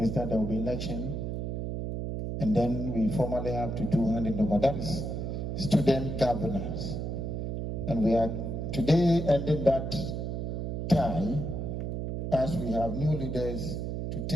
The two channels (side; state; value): right; noise; hum, 3 dB below the sound